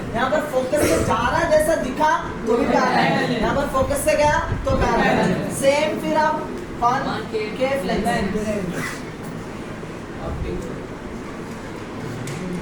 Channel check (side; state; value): both; identical; correlation 1.00